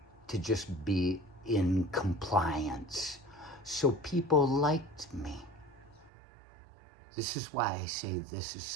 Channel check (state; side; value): drops out; left; at 6.1 s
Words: to just be in compliance. So people liked me. This is why I say this is